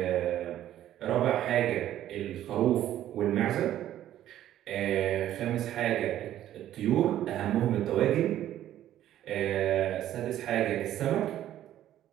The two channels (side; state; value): left; quieter; 12.3 dB